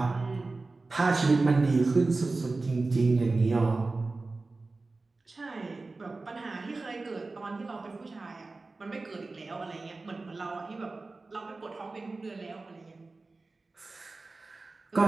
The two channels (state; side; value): quieter; left; 3.5 dB